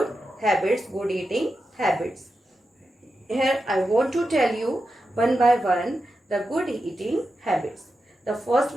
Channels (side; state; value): both; normal; correlation 0.89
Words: habits, good eating habits. Here I want to tell you one by one the good eating habits. The first